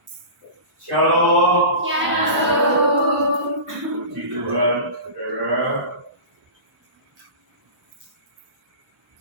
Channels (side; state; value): left; late; 1.0 ms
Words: Shalom. Shalom. Puji Tuhan, saudara.